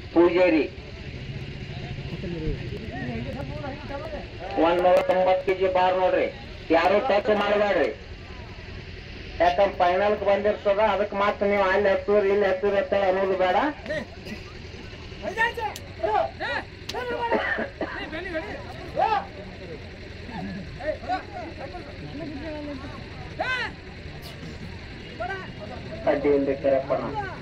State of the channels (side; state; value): both; identical; correlation 1.00